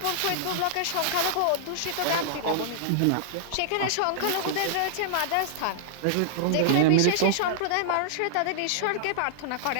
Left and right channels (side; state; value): both; different; correlation -0.01